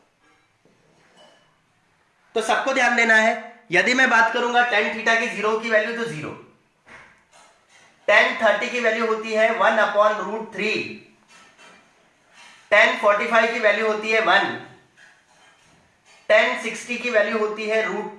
तो सबको ध्यान देना है यदि मैं बात करूंगा टेन थीटा की जीरो की वैल्यू तो जीरो, टेन 30 की वैल्यू होती है 1/√3, टेन 45 की वैल्यू होती है 1, टेन 60 की वैल्यू होती है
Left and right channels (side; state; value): both; identical; correlation 1.00